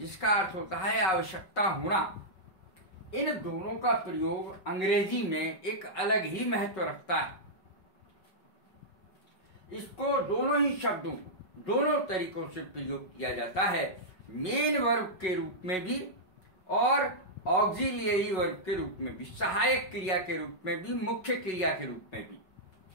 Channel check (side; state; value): right; late; 5.4 ms